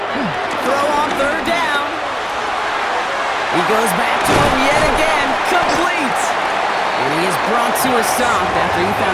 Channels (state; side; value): identical; both; correlation 1.00